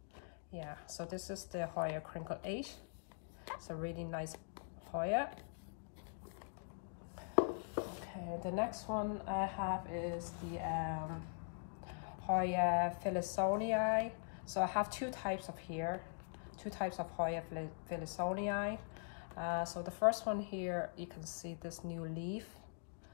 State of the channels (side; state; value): right; silent; digital silence